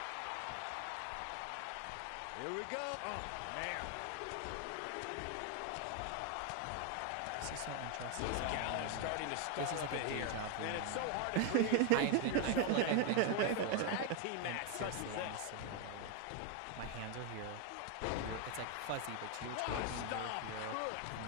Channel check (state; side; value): different; both; correlation 0.01